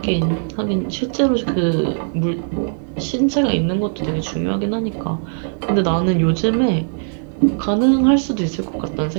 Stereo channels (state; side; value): silent; left; 66 dB below the other